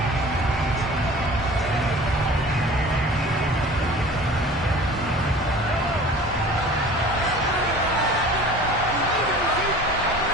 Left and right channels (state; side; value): normal; both; correlation 0.43